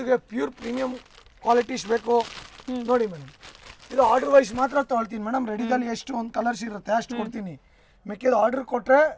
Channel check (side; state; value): both; identical; correlation 1.00